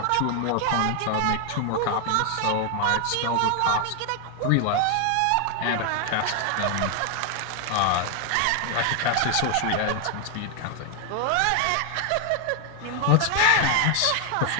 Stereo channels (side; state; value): both; different; correlation 0.00